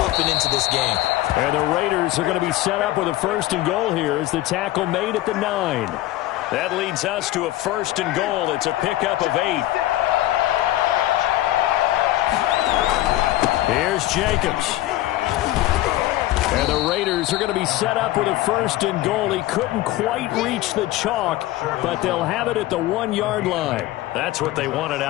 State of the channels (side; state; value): right; quieter; 15.6 dB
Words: up and into this game. And the Raiders are going to be set up with a 1st and goal here as the tackle made at the 9. That leads us to a 1st and goal. It's a pickup of 8. Here's Jacobs. And the Raiders are going to be set up with a 1st and goal. He couldn't quite reach the chalk, but they'll have it at the 1-yard line. That's what they wanted